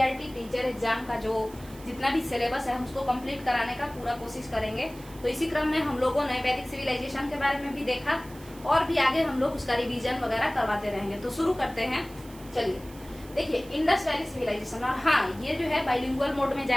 टीचर एग्जाम का जो जितना भी सिलेबस है हम उसको कंप्लीट कराने का पूरा कोशिश करेंगे। तो इसी क्रम में हम लोगों ने वैदिक सिविलाइजेशन के बारे में भी देखा और भी आगे हम लोग उसका रिवीजन वगैरह करवाते रहेंगे। तो शुरू करते हैं। चलिए देखिए, इंडस वैली सिविलाइजेशन। और हाँ, ये जो है बाइलिंगुअल मोड में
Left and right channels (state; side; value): noise; right; hiss, 21 dB below the sound